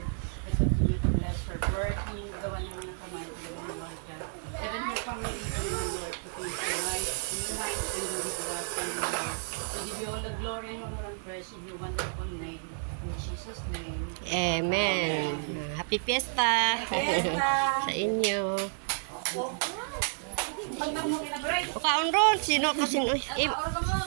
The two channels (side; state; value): left; silent; 57 dB below the other